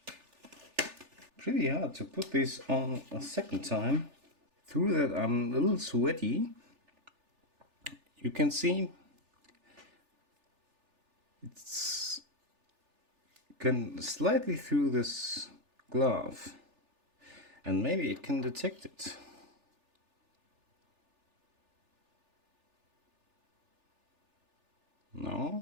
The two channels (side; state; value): left; late; 3.4 ms